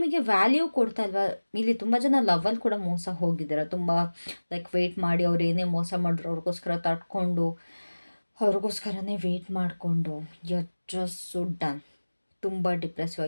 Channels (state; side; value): inverted; both; correlation -1.00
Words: ವ್ಯಾಲ್ಯೂ ಕೊಡ್ತಾ ಇಲ್ವಾ? ಇಲ್ಲಿ ತುಂಬ ಜನ ಲವಲ್ಲಿ ಕೂಡ ಮೋಸ ಹೋಗಿದ್ದಾರೆ. ತುಂಬ ಲೈಕ್ ವೆಯ್ಟ್ ಮಾಡಿ, ಅವ್ರು ಏನೇ ಮೋಸ ಮಾಡಿದ್ರು ಅವ್ರಿಗೋಸ್ಕರ ತಡ್ಕೊಂಡು, ಅವ್ರಿಗೋಸ್ಕರನೇ ವೆಯ್ಟ್ ಮಾಡಿಕೊಂಡು ಜಸ್ಟ್ ಸೊ ಡನ್. ತುಂಬ ಡಿಪ್ರೆಸಿವ್